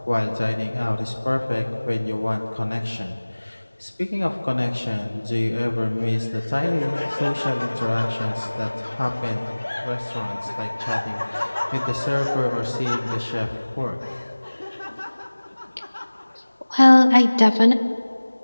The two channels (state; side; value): inverted; both; correlation -1.00